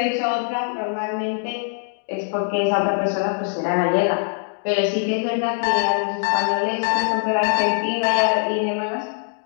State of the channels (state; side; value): silent; right; digital silence